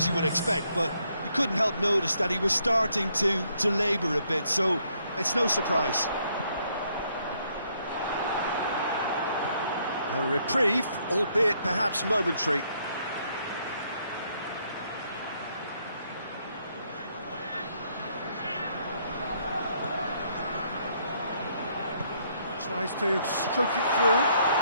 you would expect, but you couldn't help notice that he was starting to labour a bit, so it's no surprise. A reprieve, albeit perhaps momentary. Tries to stroke it through.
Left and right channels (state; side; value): inverted; both; correlation -0.71